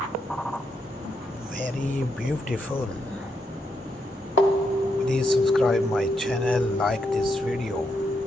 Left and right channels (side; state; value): both; normal; correlation 0.80